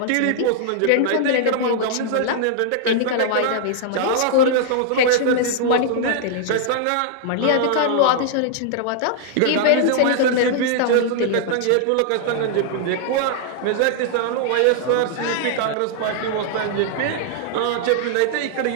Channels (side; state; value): both; different; correlation -0.01